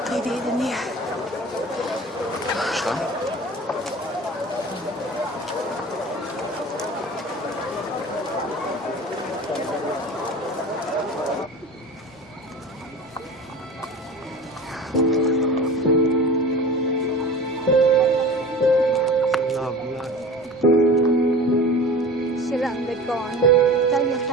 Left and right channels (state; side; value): normal; both; correlation 0.37